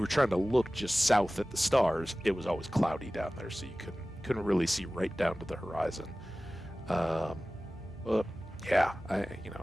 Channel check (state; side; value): normal; both; correlation 0.97